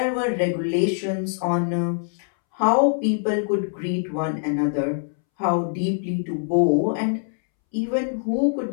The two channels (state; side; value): silent; right; 63 dB below the other